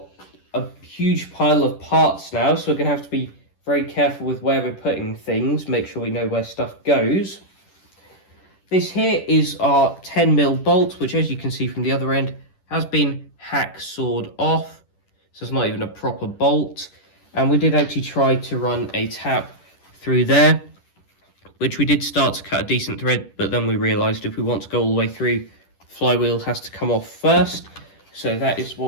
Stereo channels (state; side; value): late; right; 10 ms